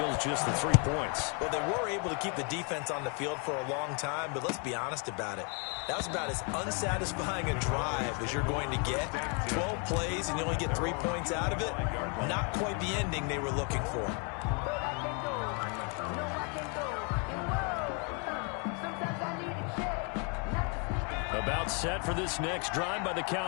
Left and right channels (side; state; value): right; quieter; 36.5 dB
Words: just the 3 points. Well, they were able to keep the defense on the field for a long time, but let's be honest about it. That was about as unsatisfying a drive as you're going to get. 12 plays and you only get 3 points out of it. Not quite the ending they were looking for. About set for this next drive by the